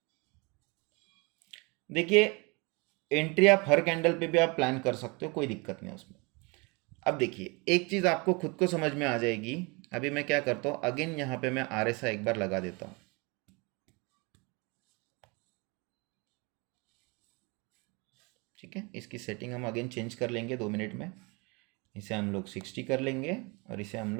देखिए, एंट्री आप हर कैंडल पे भी आप प्लान कर सकते हो, कोई दिक्कत नहीं उसमें। अब देखिए एक चीज़ आपको खुद को समझ में आ जाएगी। अभी मैं क्या करता हूँ, अगेन यहाँ पे मैं RSI एक बार लगा देता हूँ, ठीक है। इसकी सेटिंग हम अगेन चेंज कर लेंगे 2 मिनट में। इसे हम लोग 60 कर लेंगे और इसे हम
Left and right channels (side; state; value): left; quieter; 28.6 dB